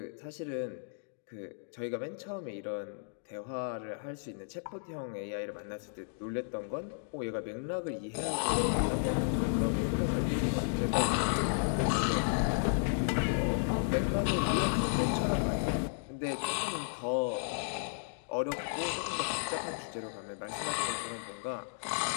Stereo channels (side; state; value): right; silent; digital silence